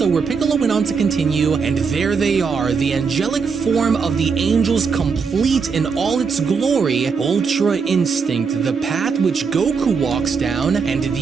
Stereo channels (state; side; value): quieter; left; 5.5 dB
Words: where Piccolo went on to continue, and there they are, the angelic form of the angels complete in all its glory, Ultra Instinct, the path which Goku walks down, and